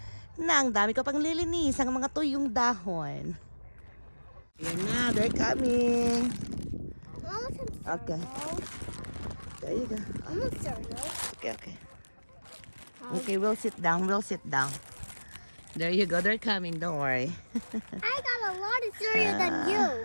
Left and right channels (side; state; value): both; inverted; correlation -1.00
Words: Na, ang dami ko pang lilinis ang mga tuyong dahon. Yan na, they're coming. I want some cereal. Okay. There you go. I want cereal. Okay. Okay, we'll sit down. There you go, they're coming, don't worry. I got a lot of cereal than